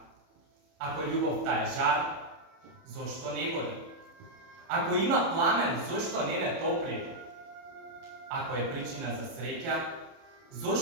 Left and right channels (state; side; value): late; left; 30 ms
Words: Ако љубовта е жар, зошто не гори? Ако има пламен, зошто не ме топли? Ако е причина за среќа,